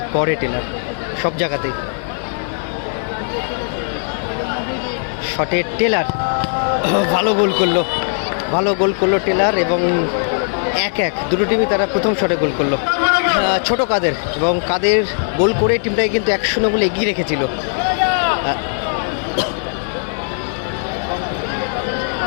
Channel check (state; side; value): silent; right; digital silence